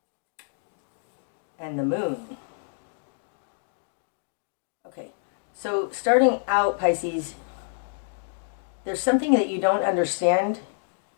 and the Moon. Okay, so starting out, Pisces, there's something that you don't understand,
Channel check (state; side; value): silent; right; digital silence